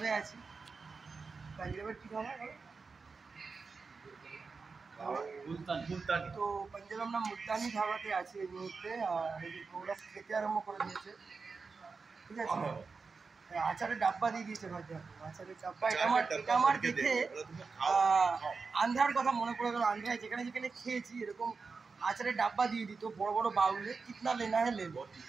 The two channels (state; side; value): quieter; left; 4.7 dB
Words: আছি। পাঞ্জাবের কি খাবার? তো পাঞ্জাবে আমরা মুলতানি ধাবাতে আছি এই মুহূর্তে। আর ওরা খেতে আরম্ভ করে দিয়েছে, ঠিক আছে। আচারের ডাব্বা দিয়ে দিয়েছে ভাই, আচারের ডাব্বা। এটা আমার দেখে আন্ধ্রার কথা মনে পড়ে গেল। আন্ধ্রায় যেখানে যেখানে খেয়েছি এরকম আচারের ডাব্বা দিয়ে দিত বড় বড় বাউলে, কিতনা লেনা হ্যাঁ লে লো,